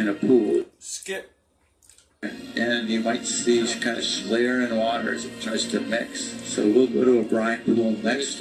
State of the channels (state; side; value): identical; both; correlation 1.00